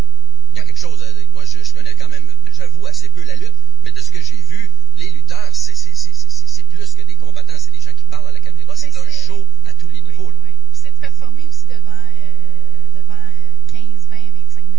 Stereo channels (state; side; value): normal; both; correlation 0.51